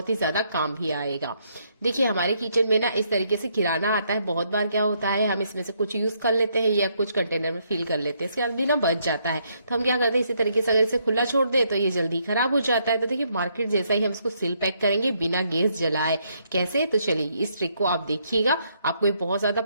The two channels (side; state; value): both; inverted; correlation -0.73